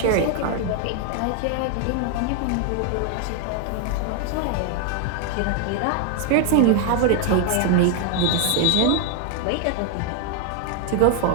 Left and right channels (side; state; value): both; different; correlation 0.00